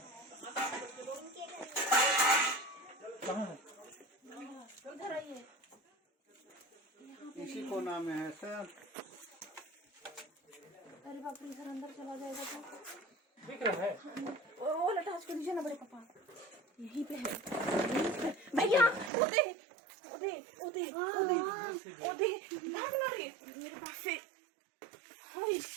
कहाँ है? उधर आइए। इसी कोना में है सर। अरे बाप रे, इधर अंदर चला जाएगा तो दिख रहा है? वो लटास को नीचे ना बड़े पापा, यहीं पे है, यहीं पे। भैया ओदे ओदे ओदे ओदे ओदे भाग ना रे मेरे पास से। हाय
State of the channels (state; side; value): drops out; left; at 19.1 s